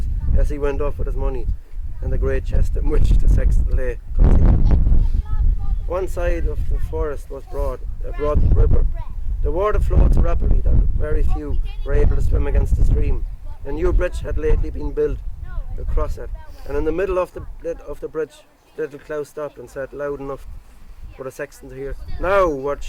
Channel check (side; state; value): both; identical; correlation 1.00